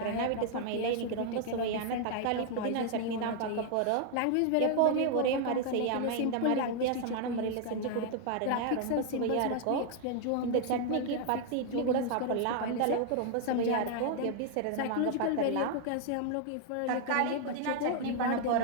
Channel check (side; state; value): both; different; correlation 0.00